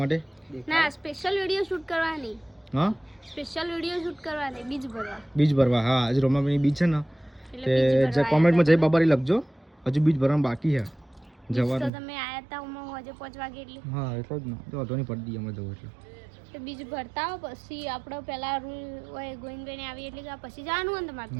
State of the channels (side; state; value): left; drops out; at 11.9 s